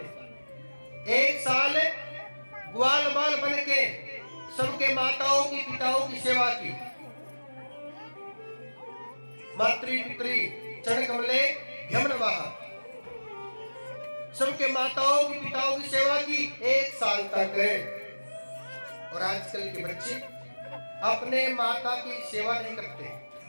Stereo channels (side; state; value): both; inverted; correlation -1.00